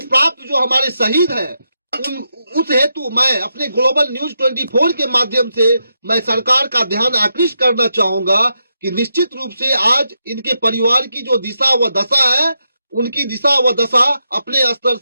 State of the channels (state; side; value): inverted; both; correlation -0.84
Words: प्राप्त जो हमारे शहीद हैं, उस हेतु मैं अपने ग्लोबल न्यूज 24 के माध्यम से मैं सरकार का ध्यान आकृष्ट करना चाहूंगा कि निश्चित रूप से आज इनके परिवार की जो दिशा व दशा है, उनकी दिशा व दशा अपने स्तर